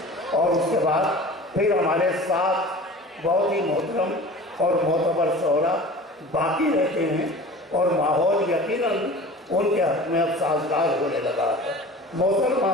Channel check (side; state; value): both; normal; correlation 0.39